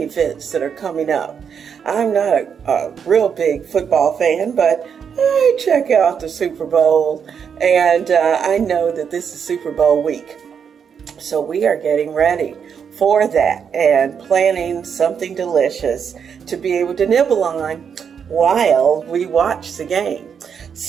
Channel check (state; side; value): quieter; left; 7.2 dB